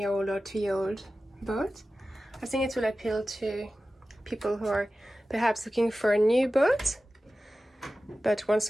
or 2-year-old boat. I think it will appeal to people who are perhaps looking for a new boat, but want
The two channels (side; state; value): both; normal; correlation 0.95